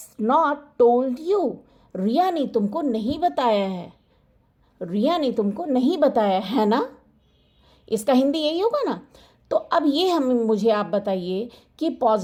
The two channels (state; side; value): identical; both; correlation 1.00